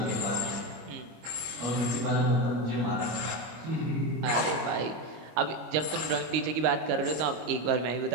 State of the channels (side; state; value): left; late; 25 ms